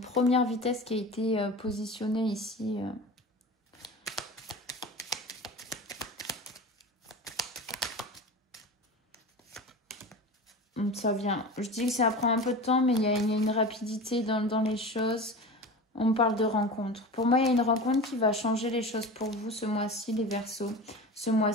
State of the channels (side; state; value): both; normal; correlation 0.31